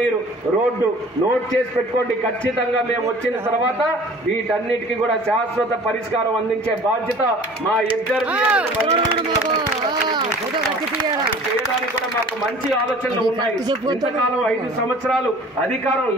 రోడ్డు నోట్ చేసి పెట్టుకోండి. ఖచ్చితంగా మేము వచ్చిన తర్వాత వీటన్నిటికీ కూడా శాశ్వత పరిష్కారం అందించే బాధ్యత మా ఇద్దరు చేయడానికి కూడా మాకు మంచి ఆలోచనలు ఉన్నాయి. ఇంతకాలం 5 సంవత్సరాలు అధికారం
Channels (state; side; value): normal; both; correlation 0.47